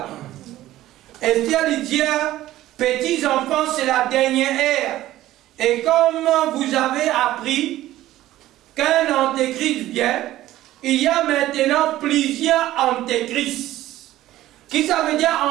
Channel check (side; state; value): left; quieter; 14.8 dB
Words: Esther lui dit, petits enfants, c'est la dernière ère. Et comme vous avez appris qu'un antéchrist vient, il y a maintenant plusieurs antéchrists. Qui ça veut dire